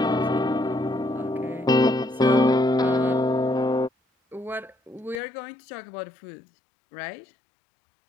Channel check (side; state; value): right; drops out; at 5.2 s